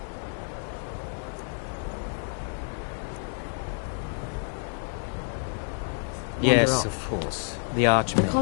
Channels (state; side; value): silent; right; 59 dB below the other